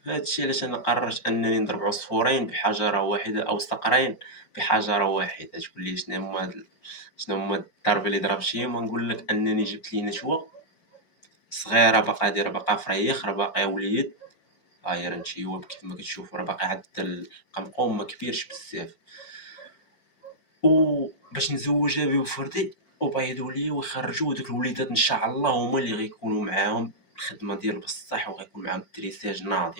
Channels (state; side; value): late; right; 4.4 ms